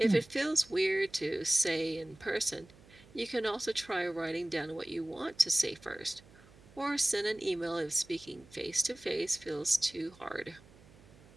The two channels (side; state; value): right; noise; hum, 24 dB below the sound